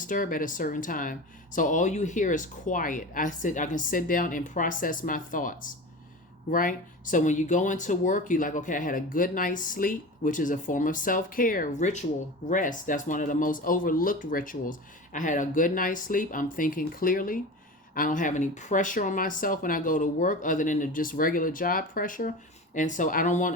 at a certain time. So all you hear is quiet. I can sit down and process my thoughts. Right? So when you go into work, you're like, okay, I had a good night's sleep, which is a form of self-care, ritual, rest. That's one of the most overlooked rituals. I had a good night's sleep. I'm thinking clearly. I don't have any pressure on myself when I go to work other than the just regular job pressure. And so I'm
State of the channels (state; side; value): normal; both; correlation 0.31